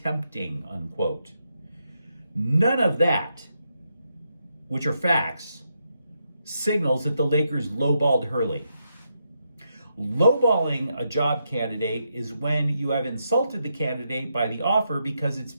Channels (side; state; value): both; inverted; correlation -0.82